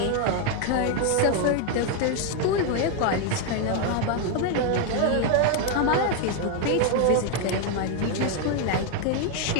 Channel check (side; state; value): both; different; correlation 0.01